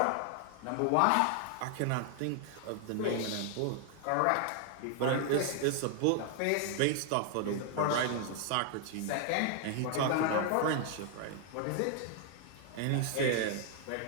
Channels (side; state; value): both; different; correlation 0.00